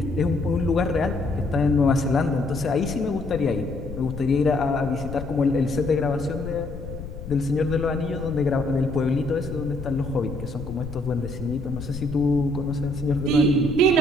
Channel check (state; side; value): noise; left; rumble, 10 dB below the sound